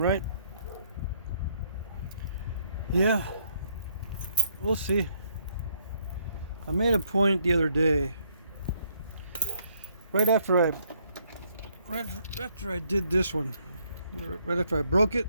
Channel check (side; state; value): both; inverted; correlation -0.70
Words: Yeah, we'll see. I made a point the other day, right after I did this one, right after I broke it,